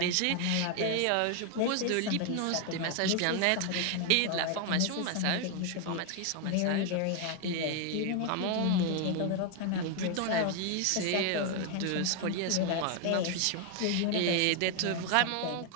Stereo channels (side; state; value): both; different; correlation 0.01